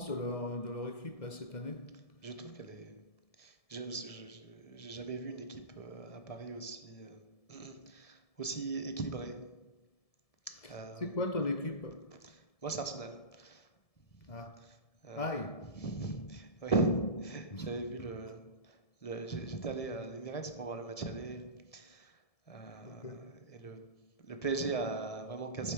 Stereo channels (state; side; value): late; right; 1.7 ms